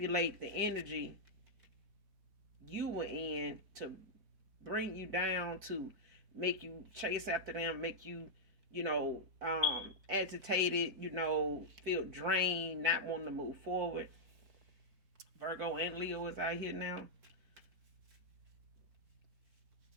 the energy you were in to bring you down, to make you chase after them, make you, agitated, feel drained, not wanting to move forward. Virgo and Leo is out here now.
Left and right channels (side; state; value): left; late; 4.5 ms